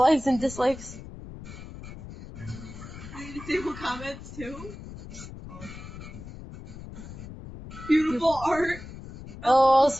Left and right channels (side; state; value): left; noise; rumble, 13 dB below the sound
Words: and dislikes. They disable comments too? Oh. Beautiful art. Oh,